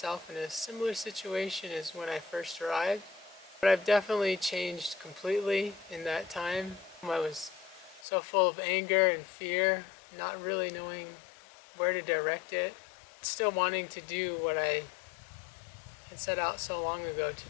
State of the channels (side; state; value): right; drops out; at 8.1 s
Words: in a similar situation as when I first arrived, but I've definitely changed completely in that time. I was so full of anger and fear, not really knowing where to direct it, still wanting to do what I had set out so long ago to